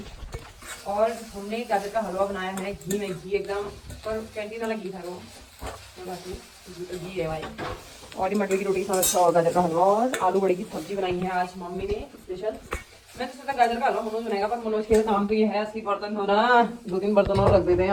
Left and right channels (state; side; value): identical; both; correlation 1.00